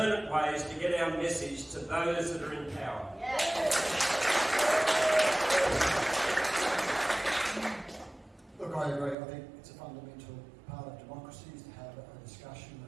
ways to get our message to those that are in power. Look, I agree. I think it's a fundamental part of democracy is to have a discussion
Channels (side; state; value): left; drops out; at 9.2 s